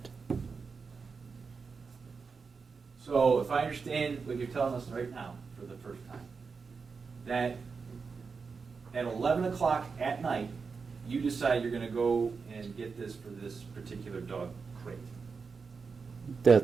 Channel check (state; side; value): quieter; left; 5.1 dB